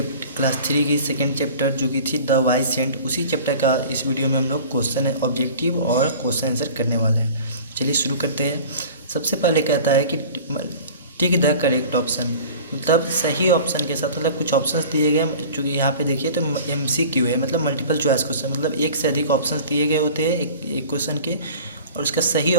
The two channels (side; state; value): both; inverted; correlation -0.42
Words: 3 की सेकेंड चैप्टर जो कि थी द वाइज सेंट। उसी चैप्टर का इस वीडियो में हम लोग क्वेश्चन ऑब्जेक्टिव और क्वेश्चन आंसर करने वाले हैं। चलिए शुरू करते हैं। सबसे पहले कहता है कि टिक द करेक्ट ऑप्शन, मतलब सही ऑप्शन के साथ, मतलब कुछ ऑप्शंस दिए गए। चूँकि यहाँ पे देखिए तो MCQ है, मतलब मल्टीपल चॉइस क्वेश्चन, मतलब एक से अधिक ऑप्शंस दिए गए होते हैं एक क्वेश्चन के, और उसका सही